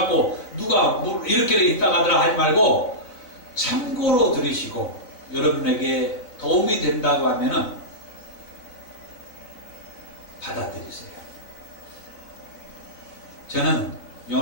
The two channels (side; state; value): right; late; 4.0 ms